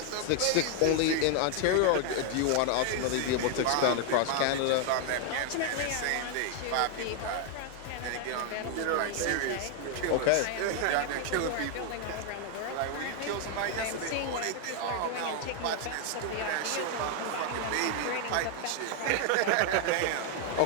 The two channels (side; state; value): both; different; correlation 0.00